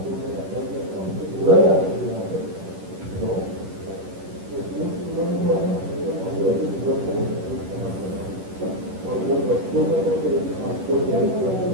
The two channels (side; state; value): left; late; 10 ms